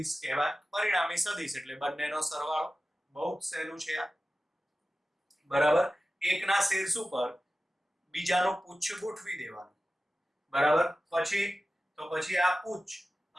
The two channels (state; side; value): normal; both; correlation 0.95